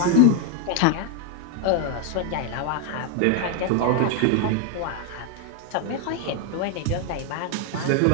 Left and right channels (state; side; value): different; both; correlation 0.00